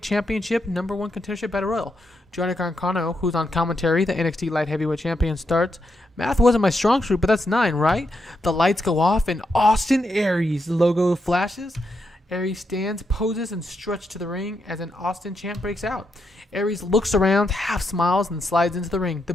Championship number 1 contendership battle royal. Johnny Gargano, who's on commentary, the NXT Light Heavyweight Champion, starts. Math wasn't my strong suit, but that's 9, right? The lights go off and Austin Aries logo flashes. Aries stands, poses, and stretches to the ring as an Austin chant breaks out. Aries looks around, half smiles, and slides into the ring. The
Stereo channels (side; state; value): both; normal; correlation 0.82